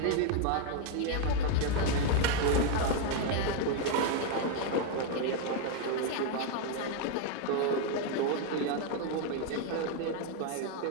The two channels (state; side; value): different; both; correlation 0.01